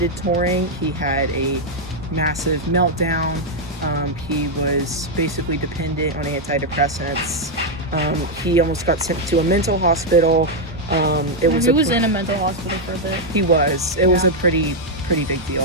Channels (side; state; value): both; normal; correlation -0.01